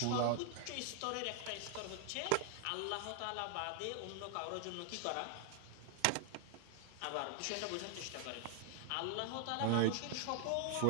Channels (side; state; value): both; different; correlation 0.00